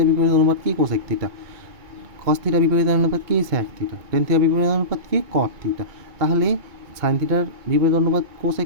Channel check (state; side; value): late; left; 2.2 ms